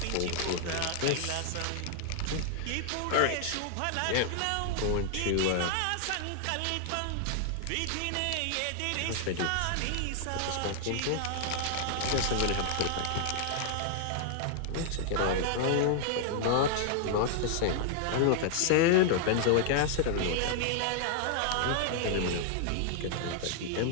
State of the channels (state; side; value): different; both; correlation 0.00